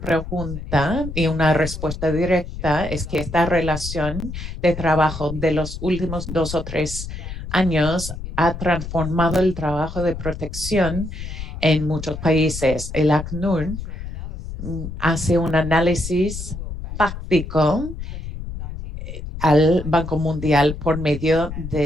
y una respuesta directa es que esta relación de trabajo de los últimos 2 o 3 años ha transformado el trabajo de protección en muchos países. El ACNUR hace un análisis fáctico al Banco Mundial por medio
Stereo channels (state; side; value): noise; left; rumble, 8 dB below the sound